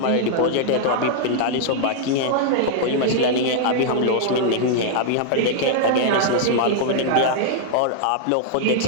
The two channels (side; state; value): both; different; correlation -0.01